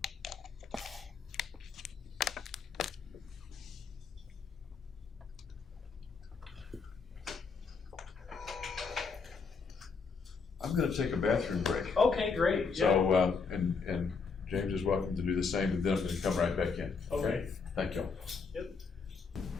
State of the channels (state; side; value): quieter; right; 5.1 dB